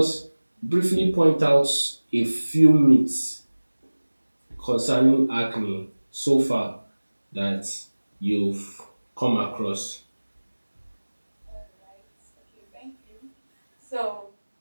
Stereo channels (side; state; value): both; inverted; correlation -1.00